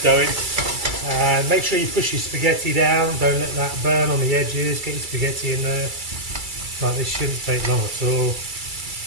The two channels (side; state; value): left; late; 2.3 ms